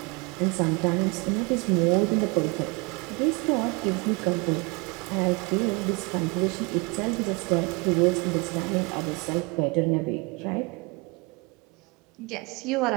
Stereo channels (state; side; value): quieter; left; 28.7 dB